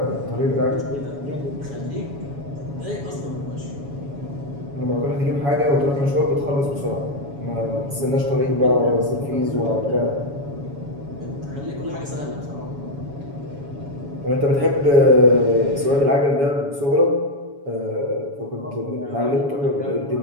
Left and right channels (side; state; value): left; late; 7.1 ms